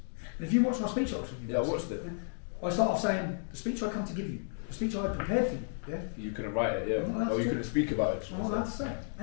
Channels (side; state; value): right; silent; digital silence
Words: And if you watch my speech at Oxford University, yeah, I watched it. I start off saying, the speech I come to give you, the speech I had prepared for you, yeah? You couldn't write it, yeah. Or you couldn't speak about it. I'm not allowed to say